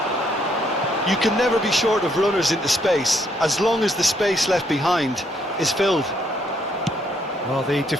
You can never be short of runners into space, as long as the space left behind is filled. Well, the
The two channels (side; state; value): both; normal; correlation 0.71